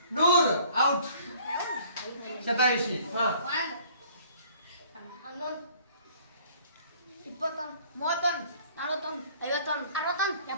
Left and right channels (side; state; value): both; inverted; correlation -0.56